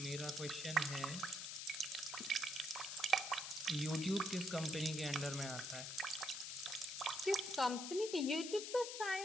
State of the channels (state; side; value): noise; left; hiss, 5 dB below the sound